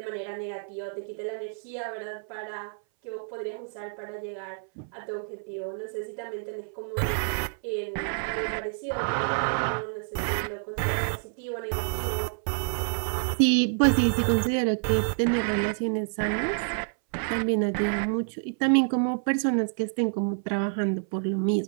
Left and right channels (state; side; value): silent; left; 58 dB below the other